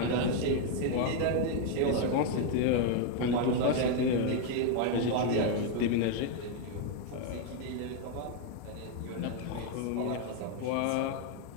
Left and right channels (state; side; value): different; both; correlation 0.01